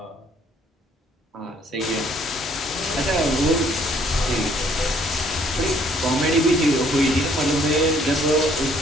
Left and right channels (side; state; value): both; normal; correlation 0.63